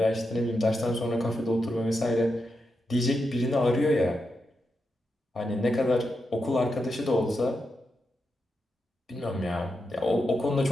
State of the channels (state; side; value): normal; both; correlation 0.86